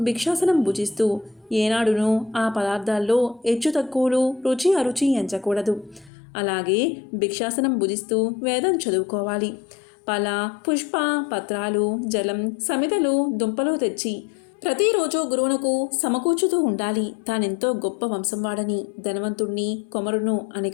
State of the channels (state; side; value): drops out; right; at 6.1 s